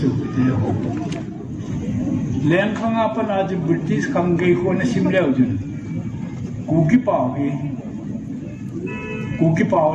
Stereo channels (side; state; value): both; identical; correlation 1.00